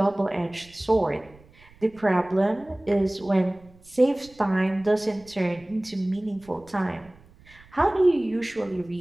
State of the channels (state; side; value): noise; right; rumble, 26 dB below the sound